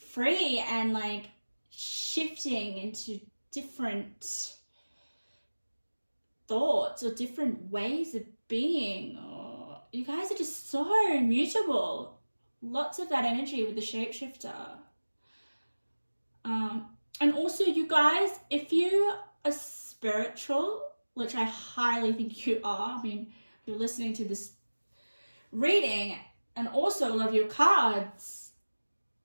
and like shifting into different thoughts or different ways of being. Or you guys are just so mutable. Lots of that energy with the shapeshifter. And also, you guys, if you are spiritual, which I highly think you are, I mean, you're listening to this reading, and also love your cards,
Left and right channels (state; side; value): inverted; both; correlation -1.00